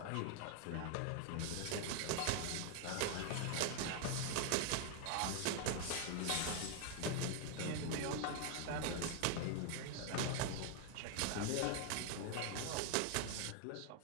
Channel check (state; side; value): different; both; correlation 0.00